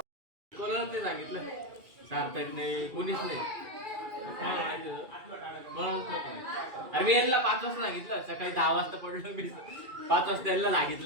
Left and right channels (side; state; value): left; late; 2.3 ms